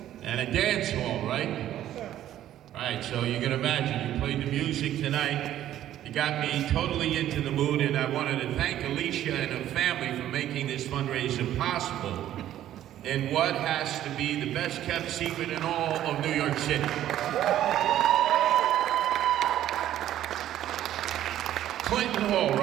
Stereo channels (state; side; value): quieter; left; 12.2 dB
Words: And a dance hall, right? Yes, sir. Right, so you can imagine, you played the music tonight, you got me totally into the mood, and I wanted to thank Alicia and her family for making this fundraiser possible in what has to be the best kept secret in all of New York City. Clinton Hall,